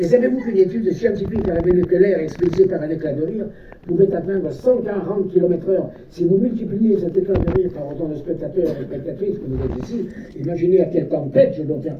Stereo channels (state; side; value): identical; both; correlation 1.00